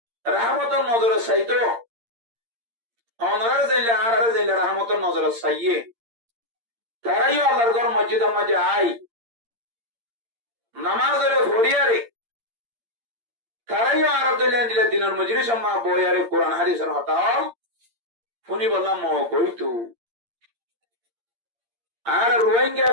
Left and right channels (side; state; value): left; late; 8.7 ms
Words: রাহমতর নজরে চাইতো অনরার যাইলে আর যাইলে রাহমতর নজরে চাইয়ে তারাইও আল্লাহর ঘর মসজিদের মাঝে আই নামাজের ভরিয়ারে তারাইও আর দিলে দিনের মজুরি সম্মা বইয়ারে কোরআন হাদিসের হতাও শুনি বললাম কইতু আর রোহিঙ্গা